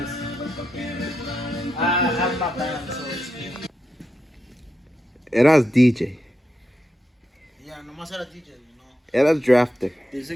I have my band, so it's... Eras DJ. Yeah, nomás era DJ, no. Eras drafter.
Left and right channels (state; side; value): normal; both; correlation 0.86